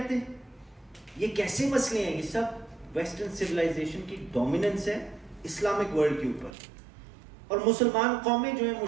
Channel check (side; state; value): left; drops out; at 6.6 s